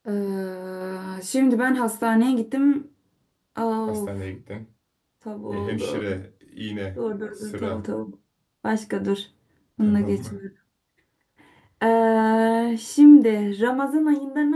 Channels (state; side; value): identical; both; correlation 1.00